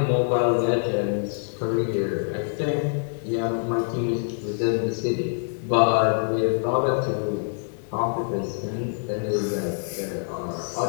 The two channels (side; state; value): right; silent; digital silence